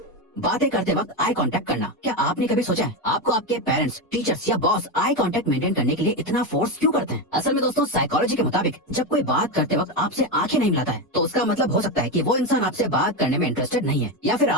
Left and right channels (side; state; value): both; normal; correlation 0.13